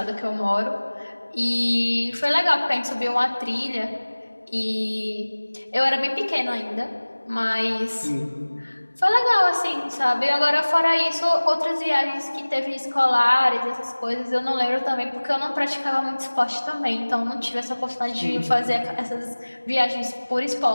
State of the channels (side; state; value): both; inverted; correlation -1.00